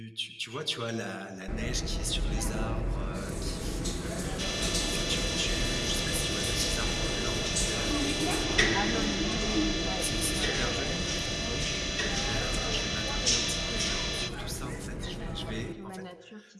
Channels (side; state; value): both; identical; correlation 1.00